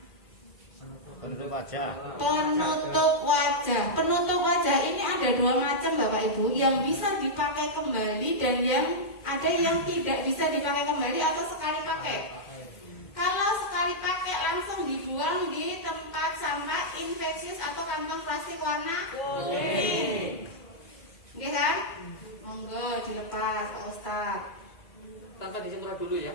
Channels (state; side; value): late; right; 2.2 ms